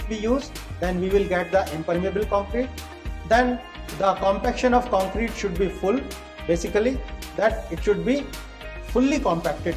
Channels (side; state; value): both; identical; correlation 1.00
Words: we use, then we will get the impermeable concrete. Then the compaction of concrete should be full basically, that it should be fully compacted